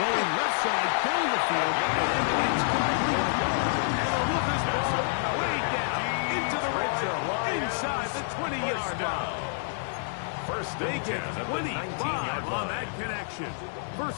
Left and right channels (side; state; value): right; silent; 59 dB below the other